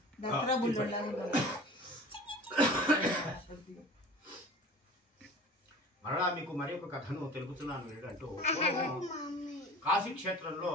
దసరా బుల్లెట్లాగా మరలా మీకు మరి ఒక కథను తెలుపుతున్నాను ఏంటంటూ కాశీ క్షేత్రంలో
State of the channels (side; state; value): both; normal; correlation 0.41